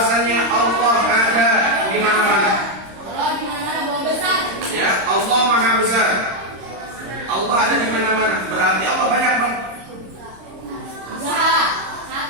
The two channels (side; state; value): left; late; 26 ms